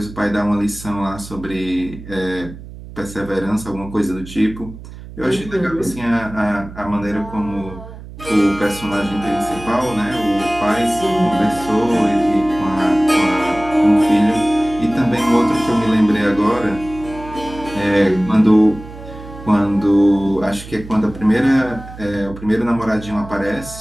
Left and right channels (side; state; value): right; noise; hum, 15 dB below the sound